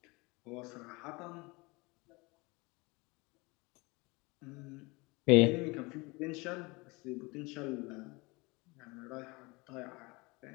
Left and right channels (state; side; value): quieter; right; 25.6 dB